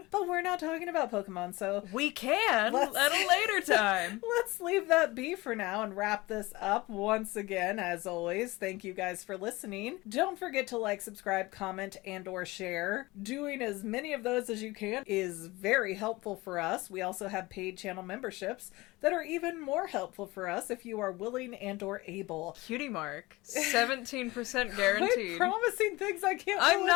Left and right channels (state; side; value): quieter; right; 21.3 dB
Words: But we're not talking about Pokemon, so... We can at a later time. Let's leave that be for now and wrap this up. Once again, as always, thank you guys for listening. Don't forget to like, subscribe, comment, and or share. Doing as many of those as you can is very helpful for us. We also have paid channel memberships that are even more helpful for us if you are willing and or able. Cutie Mark. 17% guaranteed. I'm promising things I can't I'm deliver.